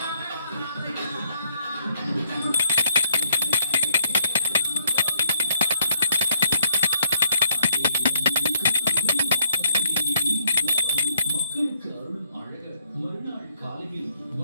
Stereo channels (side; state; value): both; inverted; correlation -0.69